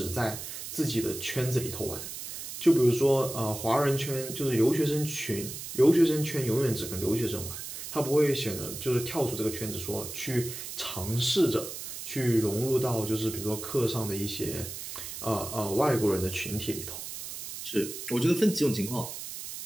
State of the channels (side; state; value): right; noise; hiss, 9 dB below the sound